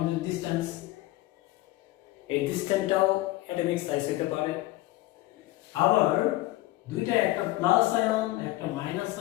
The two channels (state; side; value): quieter; right; 17.8 dB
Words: ডিসটেন্স, এই ডিসটেন্সটাও অ্যাটমিক সাইজ হতে পারে। আবার দুইটা, একটা প্লাস আয়ন একটা মাইনাস